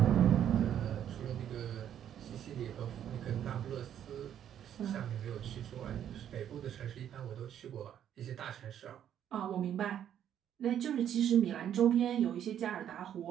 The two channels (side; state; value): left; quieter; 10.0 dB